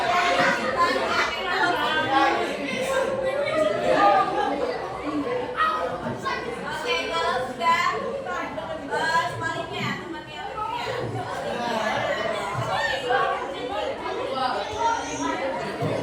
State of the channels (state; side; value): identical; both; correlation 1.00